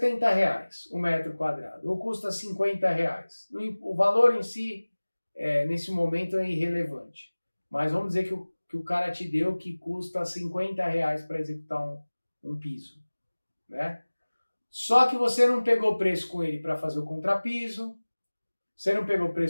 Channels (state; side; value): inverted; both; correlation -1.00